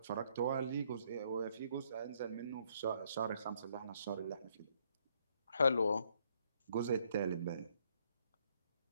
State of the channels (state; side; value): inverted; both; correlation -0.69